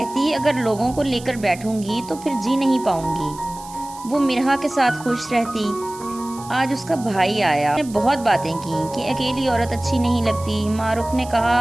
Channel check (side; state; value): right; noise; hiss, 18 dB below the sound